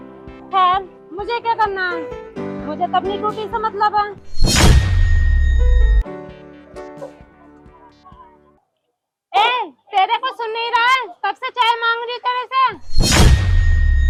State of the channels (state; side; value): identical; both; correlation 1.00